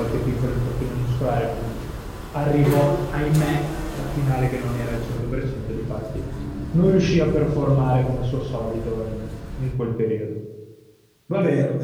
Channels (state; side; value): identical; both; correlation 1.00